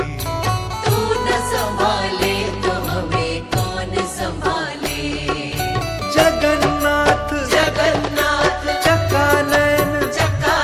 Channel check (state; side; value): identical; both; correlation 1.00